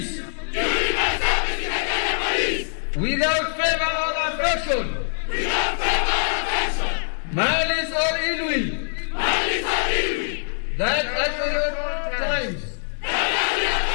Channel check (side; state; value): right; silent; digital silence